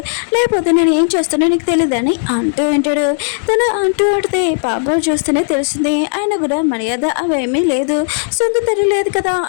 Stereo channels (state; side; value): silent; right; digital silence